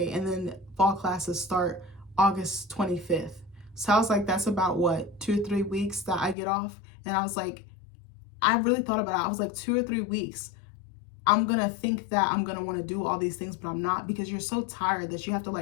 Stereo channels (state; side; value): drops out; right; at 6.4 s